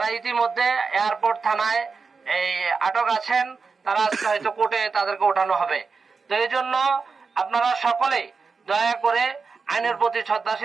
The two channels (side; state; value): left; quieter; 4.8 dB